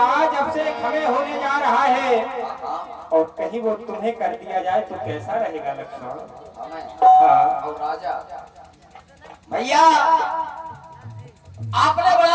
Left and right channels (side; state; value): both; identical; correlation 1.00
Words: अब से हमें होने जा रहा है हाँ, और कहीं वो तुम्हें कर दिया जाए तो कैसा रहेगा लक्ष्मण? हमें हाँ और राजा भैया आपने